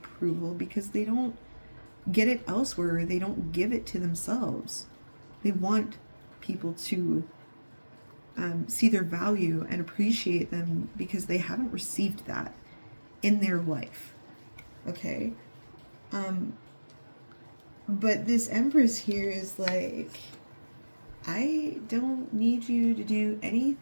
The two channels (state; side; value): inverted; both; correlation -1.00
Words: because they don't get it elsewhere, or they don't give it to themselves. They want people to see their value and appreciate them because they haven't received that in their life. Okay? But this Empress here is like, I don't need you to do